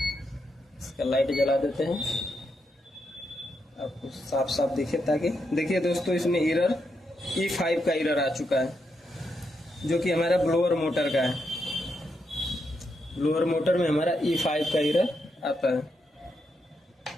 इसका लाइट जला देते हैं आपको साफ साफ दिखे, ताकि देखिए दोस्तों इसमें एरर E5 का एरर आ चुका है, जो कि हमारा ब्लोअर मोटर का है। ब्लोअर मोटर में हमारा E5 का एरर आता है,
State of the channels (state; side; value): normal; both; correlation 0.82